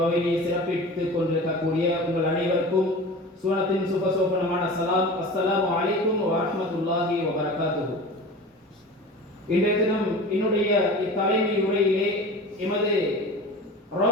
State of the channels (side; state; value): both; normal; correlation 0.35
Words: சிறப்பித்துக் கொண்டிருக்கக்கூடிய உங்கள் அனைவருக்கும் சூனத்தின் சுபசோபனமான சலாம். அஸ்ஸலாமு அலைக்கும் வரஹ்மத்துல்லாஹி வபரகாத்துஹு. இன்றைய தினம் என்னுடைய இத்தலைமை உரையிலே எமது